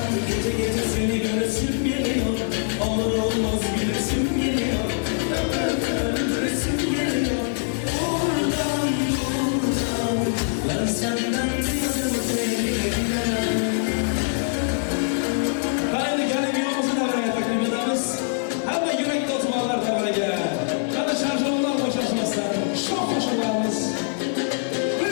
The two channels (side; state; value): right; silent; digital silence